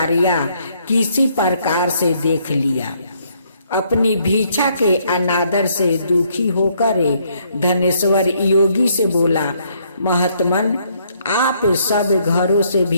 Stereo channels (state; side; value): inverted; both; correlation -0.69